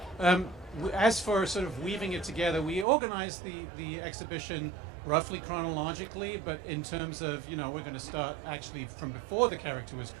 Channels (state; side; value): drops out; left; at 2.9 s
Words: As for sort of weaving it together, we organized the exhibition roughly chronologically, but in terms of, you know, we're going to start actually from before the character was